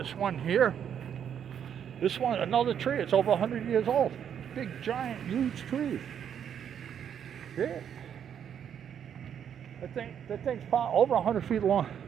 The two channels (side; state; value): left; quieter; 8.6 dB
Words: one here. This one, another tree. It's over 100 years old. Big, giant, huge tree. Yeah. That thing's probably over 100 feet long.